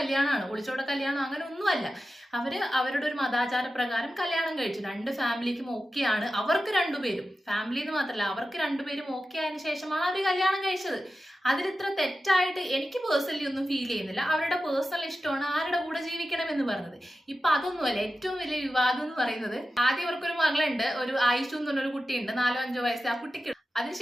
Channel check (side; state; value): both; normal; correlation 0.92